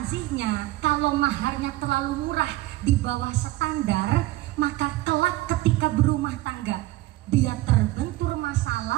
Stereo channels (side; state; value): left; quieter; 17.6 dB